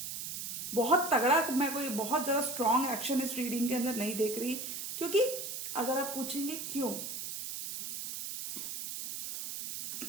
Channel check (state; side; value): noise; right; hiss, 5 dB below the sound